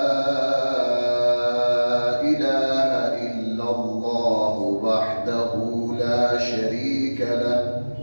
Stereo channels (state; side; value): inverted; both; correlation -1.00